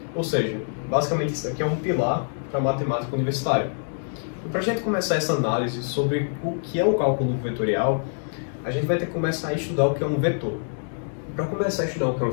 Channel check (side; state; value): right; silent; 62 dB below the other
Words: Ou seja, basicamente isso aqui é um pilar para a matemática universitária. E para a gente começar essa análise sobre o que é o cálculo vetorial, a gente vai ter que começar a estudar o que é um vetor. Para começar a estudar o que é um